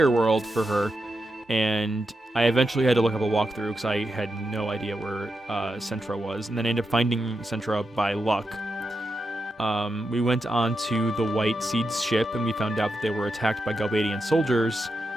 world for her, and I eventually had to look up a walkthrough because I had no idea where Centra was, and then I ended up finding Centra by luck. We went on to the White Seed's ship, and we found out that they were attacked by Galbadian soldiers.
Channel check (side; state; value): both; normal; correlation 0.87